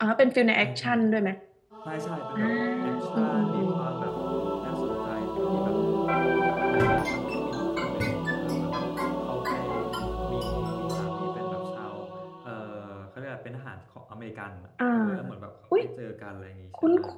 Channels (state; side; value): identical; both; correlation 1.00